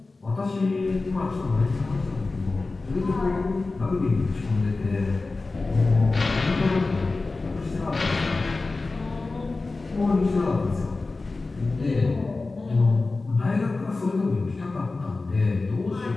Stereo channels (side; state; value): right; quieter; 3.6 dB